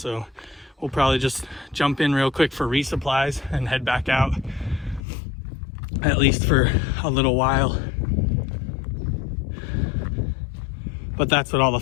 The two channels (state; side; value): drops out; right; at 5.0 s